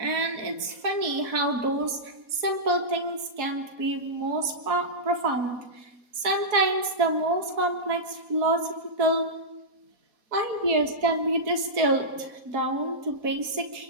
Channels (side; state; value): left; late; 4.1 ms